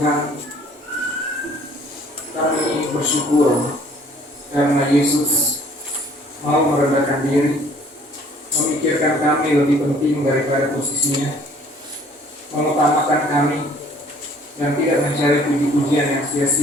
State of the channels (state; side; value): normal; both; correlation 0.56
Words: kami bersyukur karena Yesus mau merendahkan diri, memikirkan kami lebih penting daripada posisinya, mengutamakan kami, dan tidak mencari puji-pujian yang